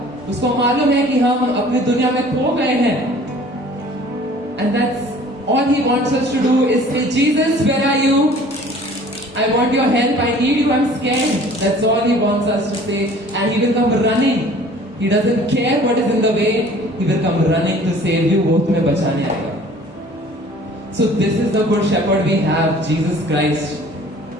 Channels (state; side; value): normal; both; correlation 0.50